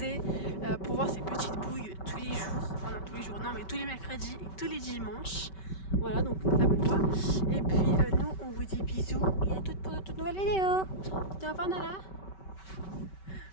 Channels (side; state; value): right; late; 5.2 ms